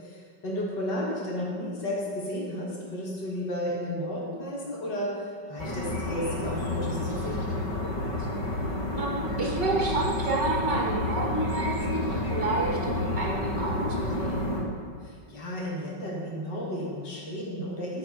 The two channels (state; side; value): late; right; 5.3 ms